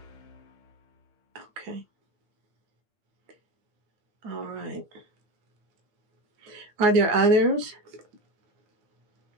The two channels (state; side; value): late; left; 8.9 ms